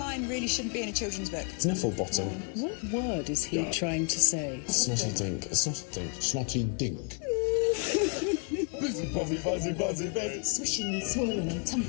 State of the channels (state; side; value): quieter; right; 38.1 dB